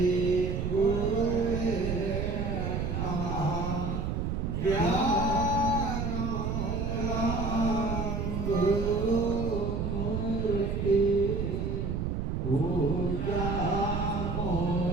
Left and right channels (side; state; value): right; noise; rumble, 1 dB below the sound